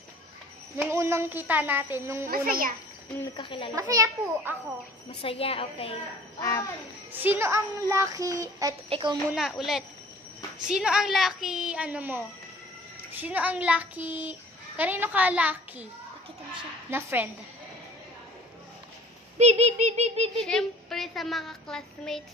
unang kita natin, Masaya. Nung nagkakilala. Masaya po ako. Masaya, okay. Sino ang lucky, ikaw muna ulit. Sino ang lucky, Sino ang lucky, kanino ka lucky? Pakita mo siya. Na friend? Siyempre sa mga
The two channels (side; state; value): both; normal; correlation 0.49